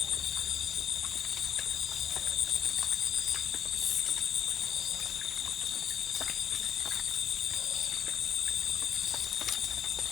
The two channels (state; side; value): quieter; right; 8.9 dB